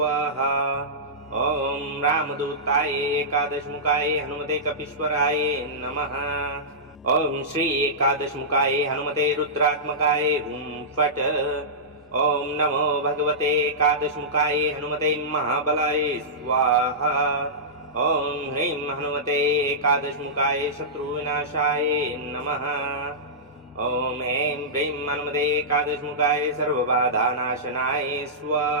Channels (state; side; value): normal; both; correlation -0.16